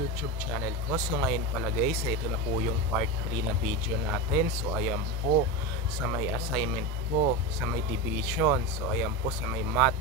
channel ko. So ngayon pala guys, ito na po yung part 3 na video natin. So ayan po sa may assignment ko, sa may division. So ayan po sa may math.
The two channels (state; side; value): normal; both; correlation 0.19